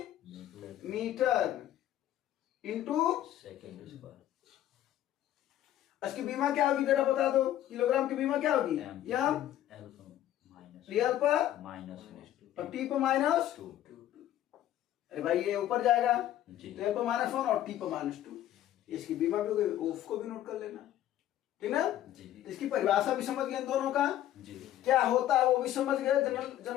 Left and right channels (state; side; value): quieter; right; 12.5 dB